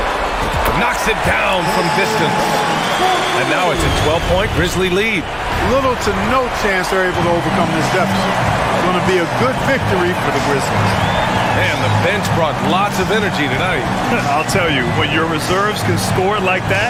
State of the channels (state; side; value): identical; both; correlation 1.00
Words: Knocks it down from distance. And now it's a 12-point Grizzly lead. Little to no chance they're able to overcome this deficit. It's going to be a good victory for the Grizzlies. And the bench brought lots of energy tonight. I'll tell you, when your reserves can score like